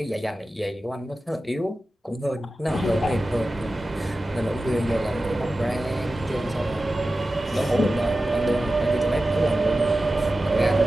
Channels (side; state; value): both; normal; correlation 0.94